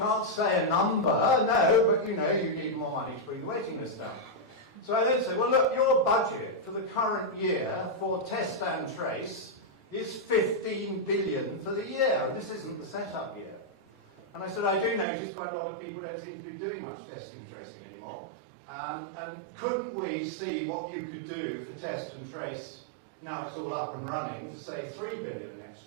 say a number, no, but, you know, you need more money to bring the waiting list down. So I then said, well, look, your budget for the current year for test and trace is 15 billion for the year, and this isn't the setup year. And I said, I do notice quite a lot of people don't seem to be doing much testing and tracing anymore. And couldn't we see what you could do for test and trace, now it's all up and running, for say 3 billion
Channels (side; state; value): left; drops out; at 15.1 s